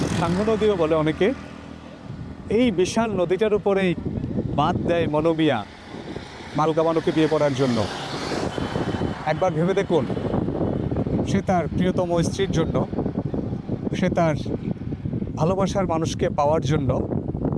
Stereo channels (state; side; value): identical; both; correlation 1.00